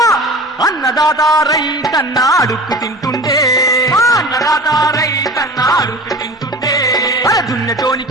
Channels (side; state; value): both; normal; correlation 0.37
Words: అన్నదాత రైతన్న అడుక్కు తింటుండే అన్నదాత రైతన్న అడుక్కు తింటుండే